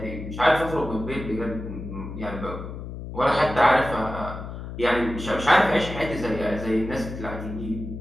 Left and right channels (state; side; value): noise; left; hum, 9 dB below the sound